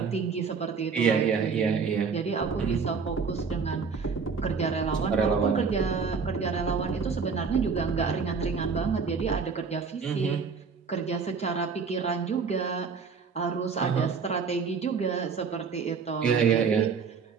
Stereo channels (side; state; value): left; quieter; 5.5 dB